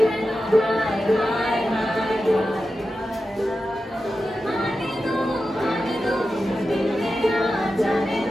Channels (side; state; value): both; normal; correlation 0.91